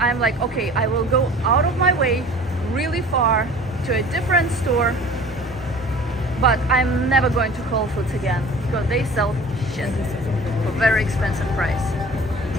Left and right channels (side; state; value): both; normal; correlation 0.45